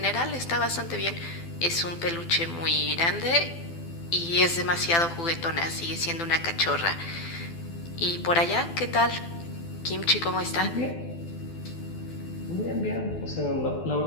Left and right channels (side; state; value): right; late; 12 ms